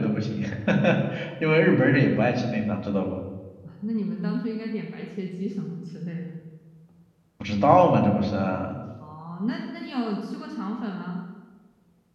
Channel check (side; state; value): both; identical; correlation 1.00